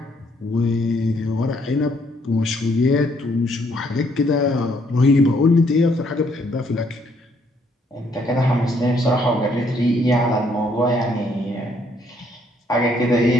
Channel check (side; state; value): both; normal; correlation 0.68